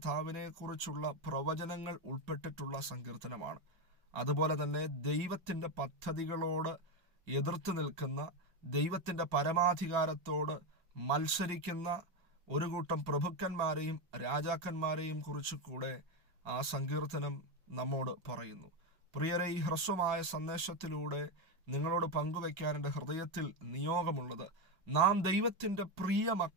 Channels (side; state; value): left; late; 5.5 ms